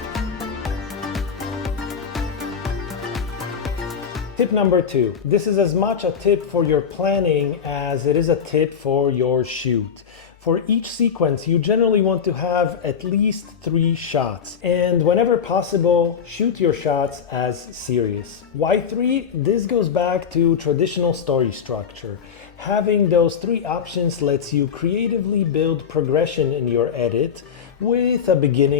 Tip number 2. This is as much a tip for your planning as it is a tip for your shoot. For each sequence, you generally want to have at least 3 shots. And whenever possible, shoot your shots as serious. Why 3? This goes back to traditional story structure. Having those 3 options lets you creatively build progression in your edit with a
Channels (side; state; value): right; quieter; 7.1 dB